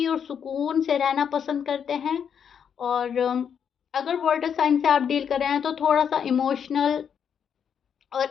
और सुकून से रहना पसंद करते हैं। और अगर वाटर साइंस से आप डील कर रहे हैं तो थोड़ा सा इमोशनल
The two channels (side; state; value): right; quieter; 7.7 dB